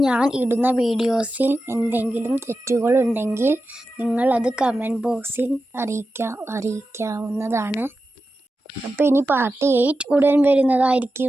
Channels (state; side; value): normal; both; correlation 0.92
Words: ഞാൻ ഇടുന്ന വീഡിയോസിൽ എന്തെങ്കിലും തെറ്റുകളുണ്ടെങ്കിൽ നിങ്ങളത് കമൻറ്റ് ബോക്സിൽ അറിയിക്കാവുന്നതാണ്. അപ്പോൾ ഇനി പാർട്ട് 8 ഉടൻ